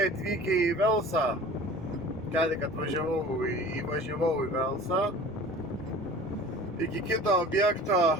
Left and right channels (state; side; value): normal; both; correlation 0.42